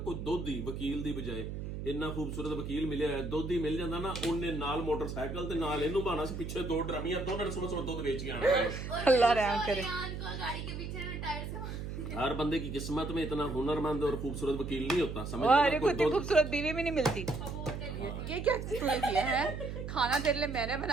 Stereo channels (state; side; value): noise; right; hum, 6 dB below the sound